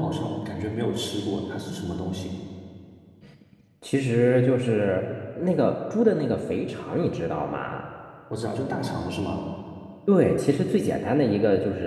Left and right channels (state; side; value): identical; both; correlation 1.00